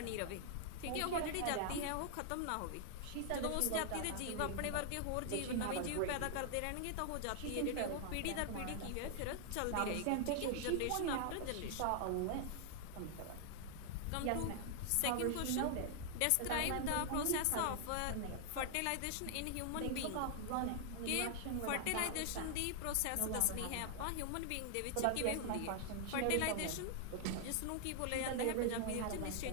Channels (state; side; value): different; both; correlation -0.01